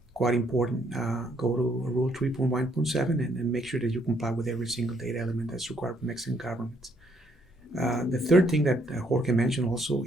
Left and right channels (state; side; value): normal; both; correlation 0.70